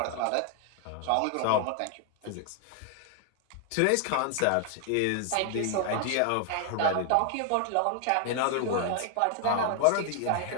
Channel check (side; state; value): both; different; correlation 0.00